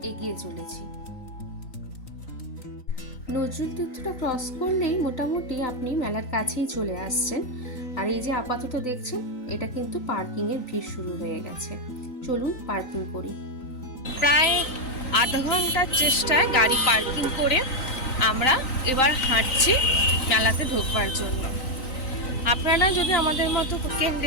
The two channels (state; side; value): late; right; 3.9 ms